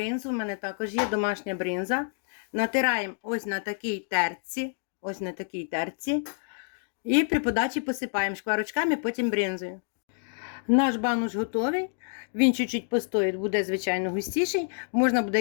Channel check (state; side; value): silent; right; 59 dB below the other